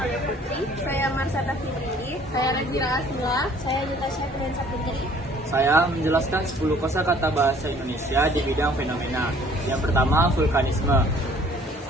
Putri. Saya Marsata Fitri. Saya Razira Asmila. Saya Juta Syafrin Saputri. Saya menjelaskan 10 kosakata bahasa Indonesia di bidang fenomena. Yang pertama, vulkanisme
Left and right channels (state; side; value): normal; both; correlation 0.56